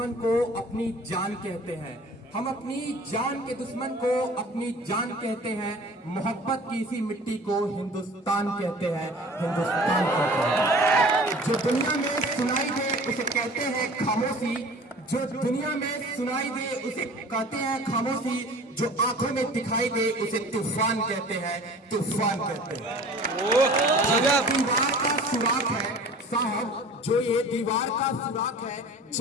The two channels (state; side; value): normal; both; correlation 0.44